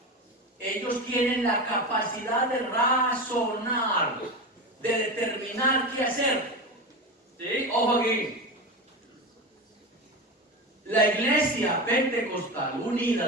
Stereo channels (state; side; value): normal; both; correlation 0.23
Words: ellos tienen la capacidad de razonar, de determinar qué hacer. ¿Sí? Ojo aquí. La Iglesia Pentecostal Unida